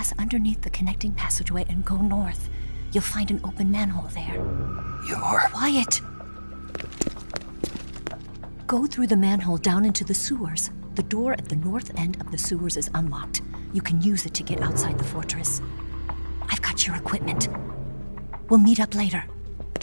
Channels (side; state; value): both; inverted; correlation -1.00